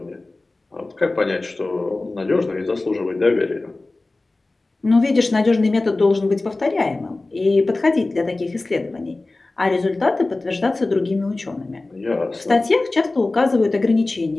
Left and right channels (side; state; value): right; quieter; 3.1 dB